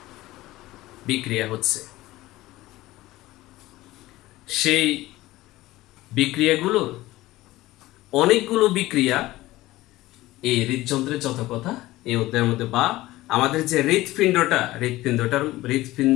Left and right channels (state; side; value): quieter; right; 17.5 dB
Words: বিক্রিয়া হচ্ছে। সেই বিক্রিয়াগুলোর অনেকগুলো বিক্রিয়া এই হৃদযন্ত্রের যত কথা এই অধ্যায়ের মধ্যে, বা আমাদের যে